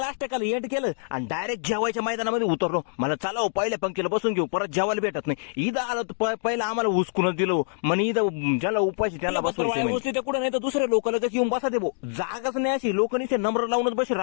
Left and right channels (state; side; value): silent; right; digital silence